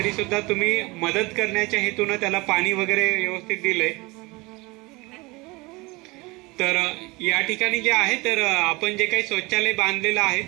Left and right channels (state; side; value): quieter; left; 24.0 dB